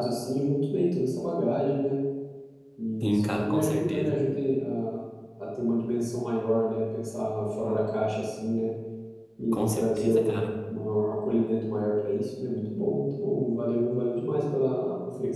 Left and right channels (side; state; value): both; identical; correlation 1.00